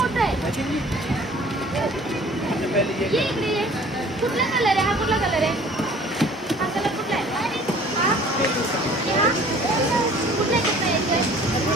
आहे. ये इकडे ये. कुठला कलर आहे हा, कुठला कलर आहे हा, कलर कुठला आहे हा, कुठला आहे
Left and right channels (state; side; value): normal; both; correlation 0.51